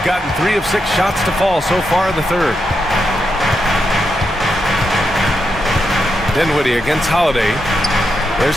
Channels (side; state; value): both; normal; correlation 0.84